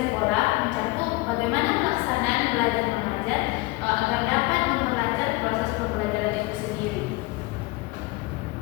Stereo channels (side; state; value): right; quieter; 22.7 dB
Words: mencakup bagaimana pelaksanaan belajar mengajar agar dapat memperlancar proses pembelajaran itu sendiri.